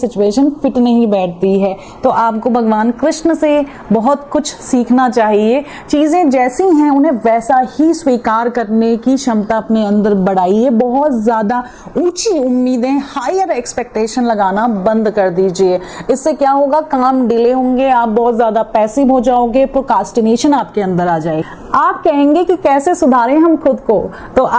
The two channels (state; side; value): identical; both; correlation 1.00